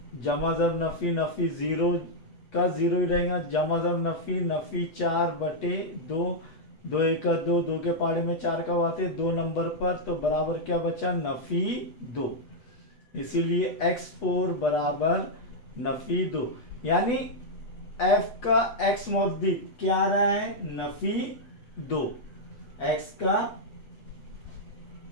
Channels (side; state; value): right; late; 8.2 ms